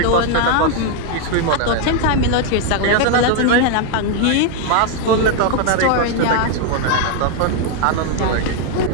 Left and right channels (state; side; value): different; both; correlation 0.01